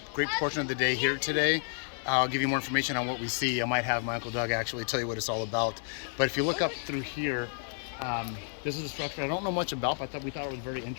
great portion of the day here today. I'll give you more information on what we see. I might have my Uncle Doug actually tell you what it's all about. But if you look up through here, this is a structure I don't know much about, but we thought it was very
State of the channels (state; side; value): silent; right; 57 dB below the other